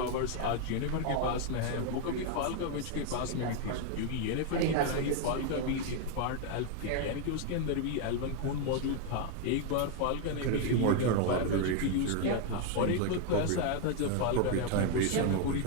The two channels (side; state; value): both; different; correlation 0.01